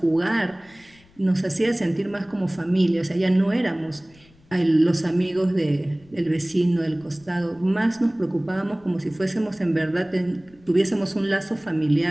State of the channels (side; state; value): left; noise; rumble, 29 dB below the sound